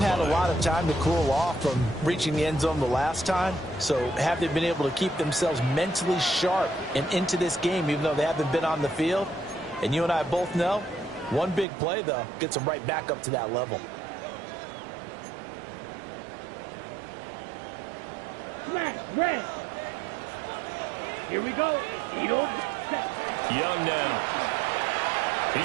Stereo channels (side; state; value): left; drops out; at 11.7 s